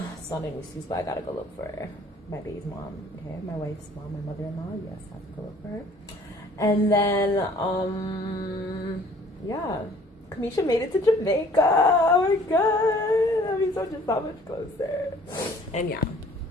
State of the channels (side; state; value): both; normal; correlation 0.54